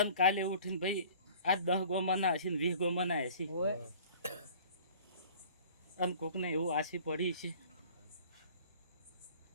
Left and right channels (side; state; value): both; inverted; correlation -0.48